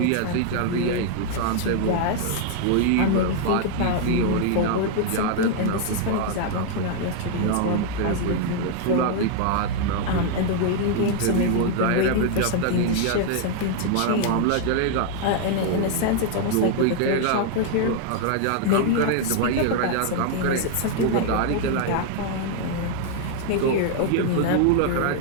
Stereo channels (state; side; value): different; both; correlation 0.00